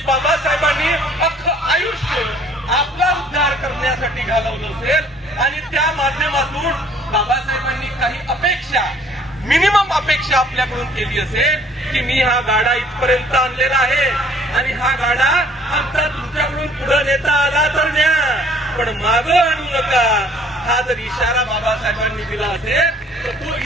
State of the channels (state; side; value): normal; both; correlation 0.57